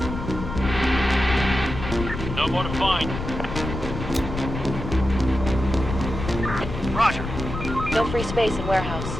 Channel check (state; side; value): noise; left; rumble, 6 dB below the sound